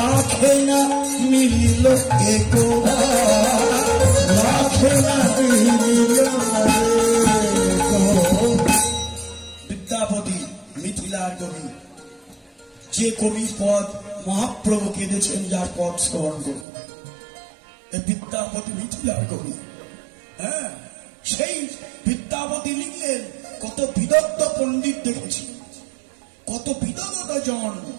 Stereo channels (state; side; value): drops out; left; at 16.7 s